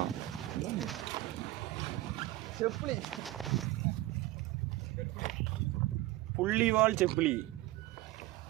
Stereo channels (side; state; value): left; quieter; 17.2 dB